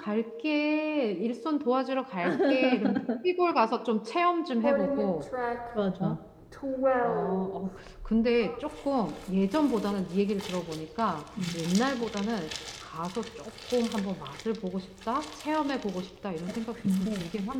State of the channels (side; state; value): both; identical; correlation 1.00